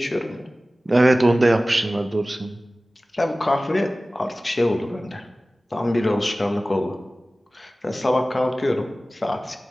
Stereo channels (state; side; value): normal; both; correlation 0.97